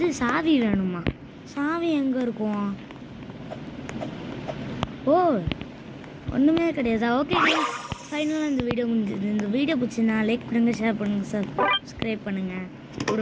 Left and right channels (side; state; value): both; identical; correlation 1.00